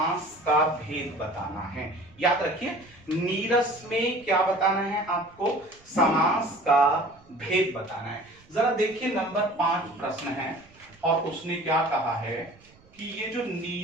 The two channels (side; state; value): right; noise; rumble, 28 dB below the sound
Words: का भेद बताना है। याद रखिए नीरस में क्या बताना है आपको, समास का भेद बताना है। जरा देखिए नंबर 5 प्रश्न है और उसने क्या कहा है कि ये जो